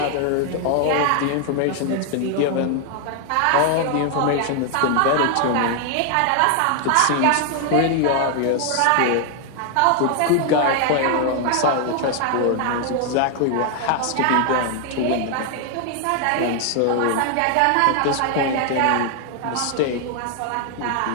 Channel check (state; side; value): different; both; correlation 0.00